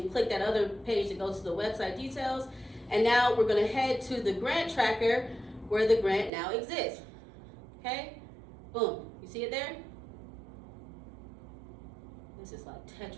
click that other page that goes to the website details. And now we're gonna head to the grant tracker where the grant now exists, okay? Boom, you see it there? This is like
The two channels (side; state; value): left; drops out; at 6.3 s